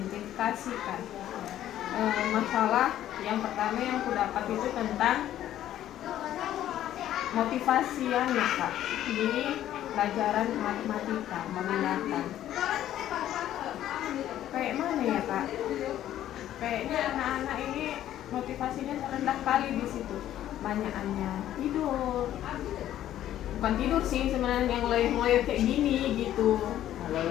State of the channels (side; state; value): right; quieter; 12.2 dB